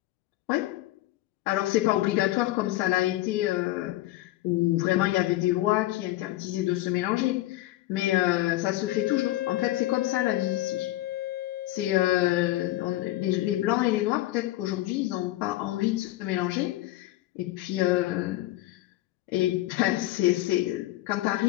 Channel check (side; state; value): right; quieter; 16.6 dB